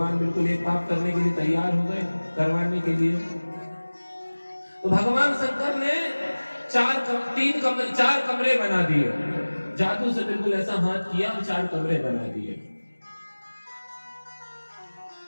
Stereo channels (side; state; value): both; inverted; correlation -1.00